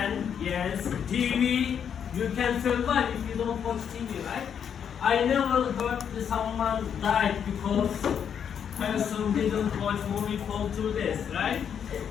yes. TV, you can survive if you don't watch TV, right? I never heard that someone died because person didn't watch movie for 2 days, right?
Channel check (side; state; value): right; quieter; 8.0 dB